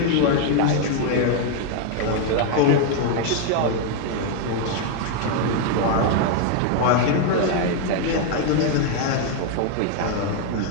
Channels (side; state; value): both; different; correlation 0.00